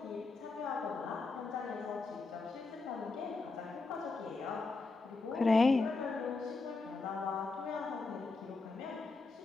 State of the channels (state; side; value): quieter; right; 3.8 dB